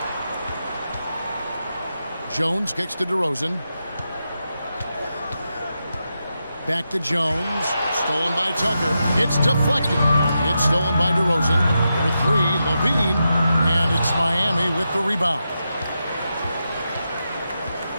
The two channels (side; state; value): both; inverted; correlation -0.87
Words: Jones kicks to DeRozan. Back to Jones. Stolen by Tucker. It's deflected. It's stolen by DeRozan. For three, Levine. And it's Miami with the rebound.